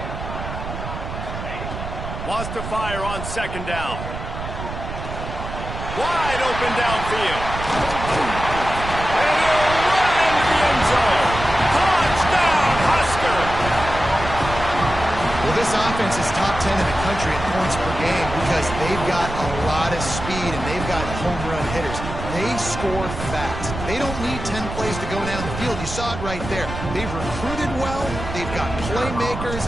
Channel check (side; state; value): right; noise; rumble, 7 dB below the sound